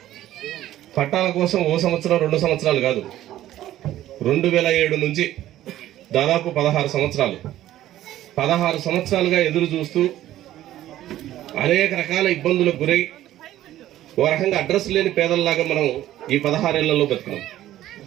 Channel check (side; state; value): left; quieter; 13.6 dB